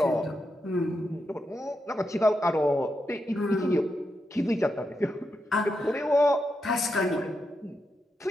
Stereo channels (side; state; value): both; normal; correlation 0.85